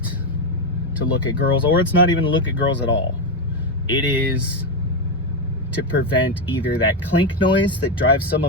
to look at girls, or it's not even to look at girls at all. It is to prevent either that clink noise that drives some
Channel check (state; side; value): normal; both; correlation 0.08